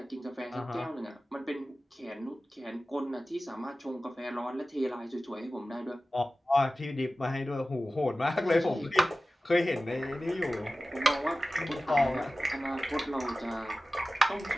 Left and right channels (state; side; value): normal; both; correlation 0.96